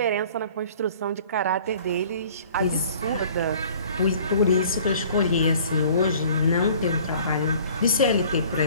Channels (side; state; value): both; inverted; correlation -0.51